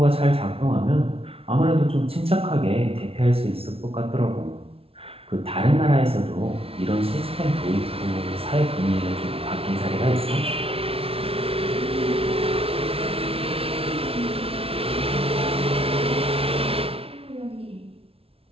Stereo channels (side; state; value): left; late; 0.27 ms